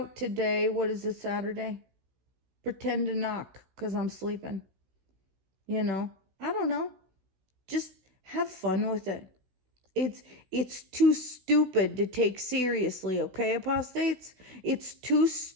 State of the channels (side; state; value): left; late; 16 ms